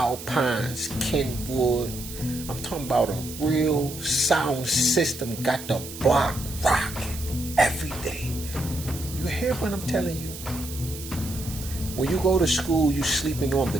Kenwood. I'm talking about a real sound system, got the block rocking every day. You hear what I'm telling you? When you go to school, you sleeping on the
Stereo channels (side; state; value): right; noise; hiss, 12 dB below the sound